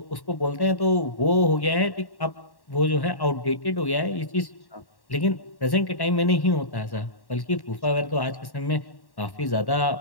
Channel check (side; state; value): right; late; 1.1 ms